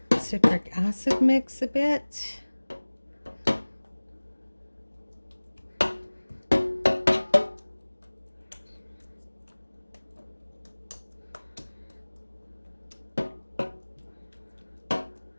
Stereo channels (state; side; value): inverted; both; correlation -1.00